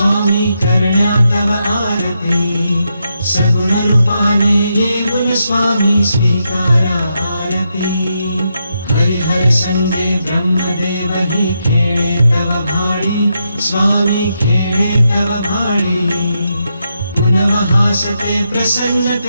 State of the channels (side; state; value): both; inverted; correlation -0.83